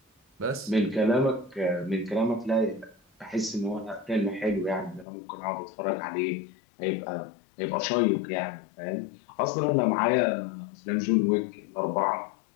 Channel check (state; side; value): drops out; right; at 5.1 s